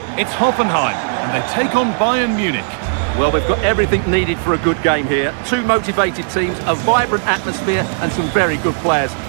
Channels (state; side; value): silent; left; digital silence